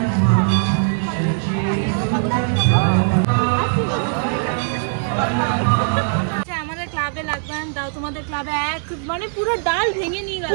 আমাদের ক্লাবে লাগবে দাও, তোমাদের ক্লাবে এক মানে পুরো ডাল ভেঙে নিয়ে গেল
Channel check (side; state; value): left; silent; 64 dB below the other